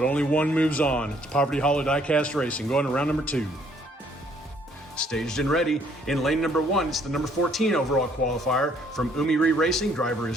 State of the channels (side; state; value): both; normal; correlation 0.64